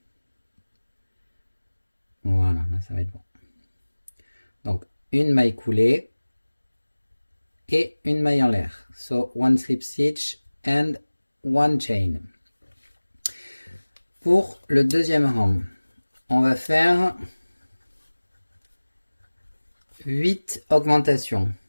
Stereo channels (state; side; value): inverted; both; correlation -1.00